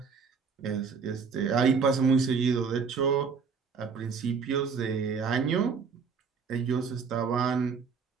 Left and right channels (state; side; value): quieter; left; 5.6 dB